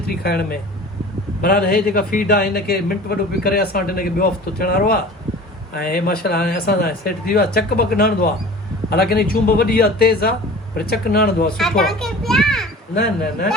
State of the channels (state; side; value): normal; both; correlation 0.41